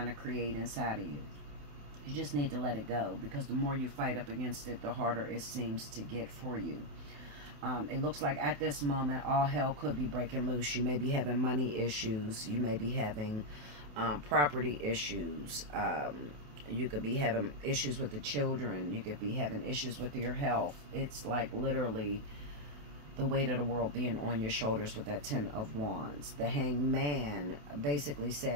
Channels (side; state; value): left; late; 28 ms